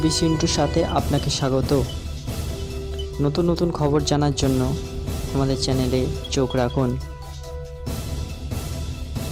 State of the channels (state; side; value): identical; both; correlation 1.00